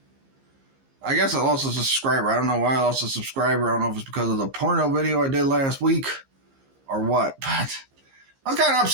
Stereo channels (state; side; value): late; left; 15 ms